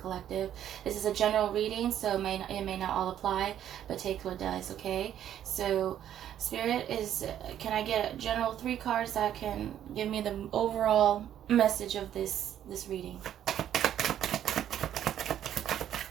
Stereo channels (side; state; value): left; quieter; 10.7 dB